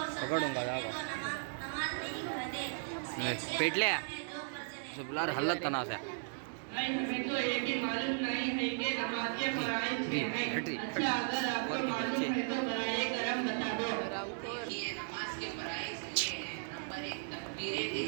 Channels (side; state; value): left; silent; digital silence